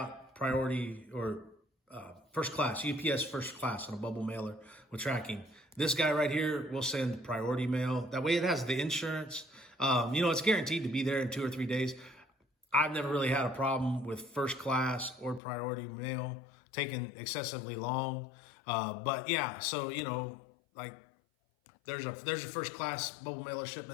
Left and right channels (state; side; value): drops out; right; at 15.4 s